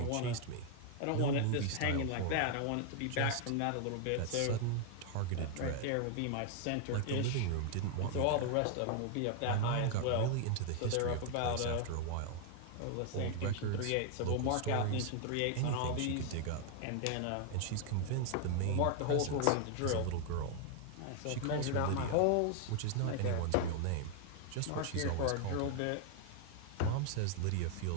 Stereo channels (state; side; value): different; both; correlation 0.00